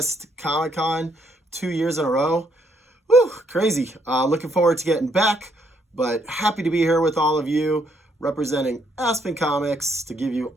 Comic-Con 2 years in a row. Whew, crazy. Looking forward to getting back. But happy to be here with all of you, representing Aspen Comics, to give you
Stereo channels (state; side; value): normal; both; correlation 0.72